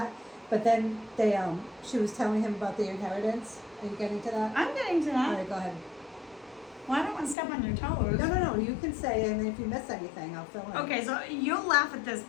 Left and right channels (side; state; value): right; drops out; at 7.4 s